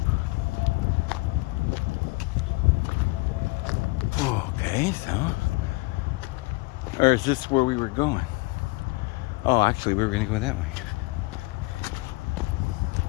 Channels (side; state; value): right; quieter; 24.8 dB